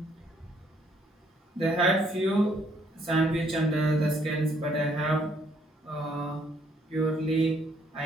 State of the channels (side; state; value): both; normal; correlation 0.67